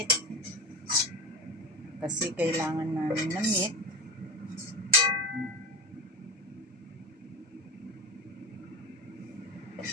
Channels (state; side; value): normal; both; correlation 0.25